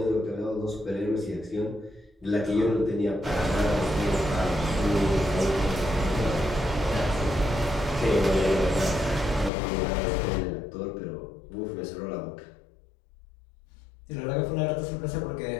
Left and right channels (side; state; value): right; drops out; at 9.5 s